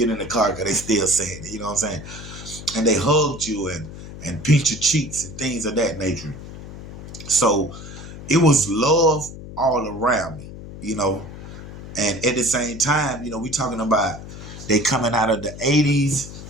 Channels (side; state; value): left; noise; hum, 13 dB below the sound